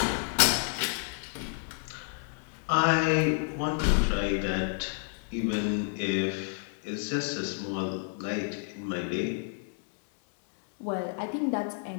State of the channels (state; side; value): silent; right; 56 dB below the other